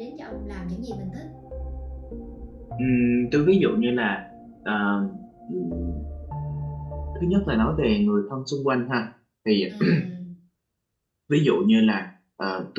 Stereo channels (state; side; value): identical; both; correlation 1.00